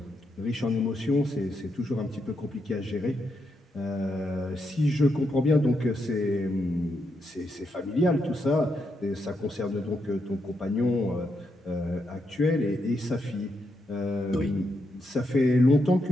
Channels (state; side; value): normal; both; correlation 0.81